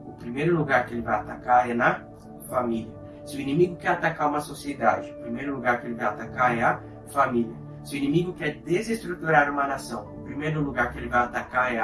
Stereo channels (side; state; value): both; identical; correlation 1.00